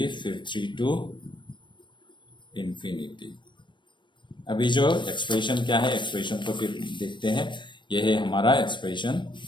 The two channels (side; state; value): right; late; 0.22 ms